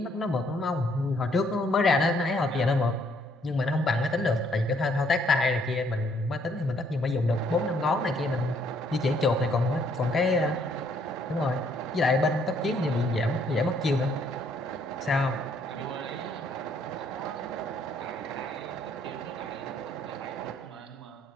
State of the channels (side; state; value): both; normal; correlation 0.67